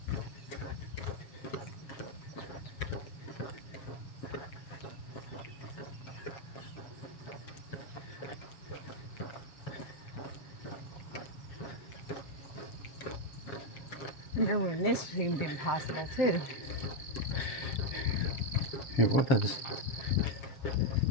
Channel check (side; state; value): right; late; 7.2 ms